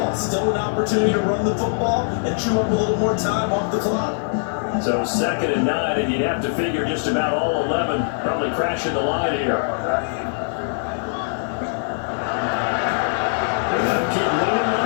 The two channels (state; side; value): silent; right; digital silence